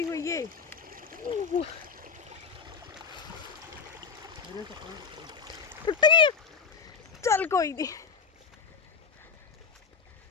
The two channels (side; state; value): right; quieter; 5.8 dB